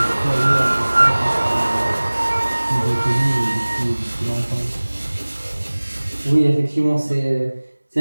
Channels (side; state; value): both; inverted; correlation -1.00